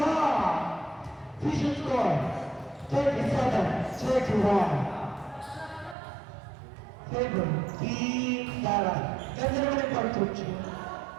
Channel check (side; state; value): left; drops out; at 6.0 s